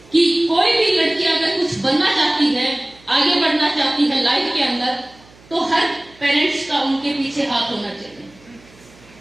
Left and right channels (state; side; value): noise; right; hum, 26 dB below the sound